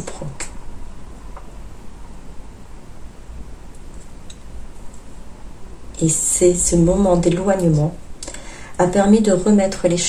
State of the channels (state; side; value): identical; both; correlation 1.00